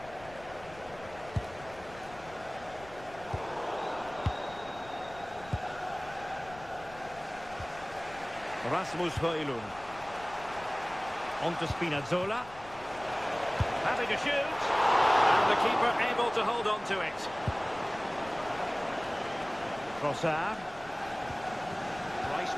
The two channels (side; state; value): left; noise; rumble, 20 dB below the sound